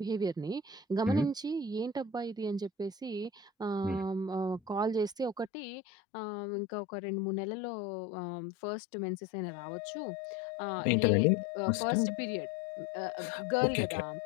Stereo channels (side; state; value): right; drops out; at 5.5 s